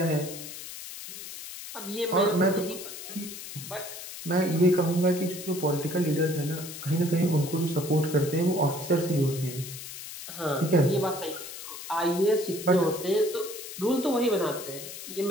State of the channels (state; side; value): noise; left; hiss, 11 dB below the sound